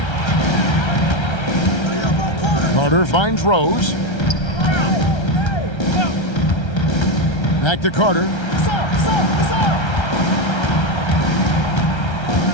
Carter finds Rose. Back to Carter.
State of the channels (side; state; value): right; late; 1.3 ms